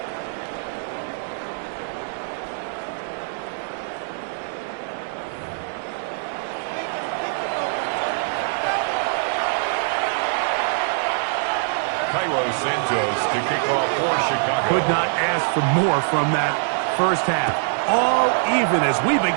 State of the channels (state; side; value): silent; left; digital silence